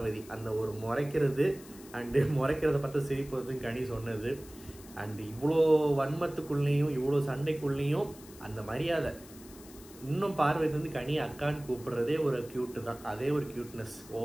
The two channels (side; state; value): left; noise; hiss, 20 dB below the sound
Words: அந்த ஒரு முறைக்கிறது அண்டு முறைக்கிறத பார்த்து சிரிப்பதும் கனி சொன்னது. அண்டு இவ்வளோ வன்மத்துக்குள்ளேயும் இவ்வளோ சண்டைக்குள்ளேயும் அந்த மரியாதை இன்னும் பார்வதி வந்து கனி அக்கான்னு கூப்பிடுறதே ஒரு கியூட்டு தான். அதே ஒரு கியூட்னஸ்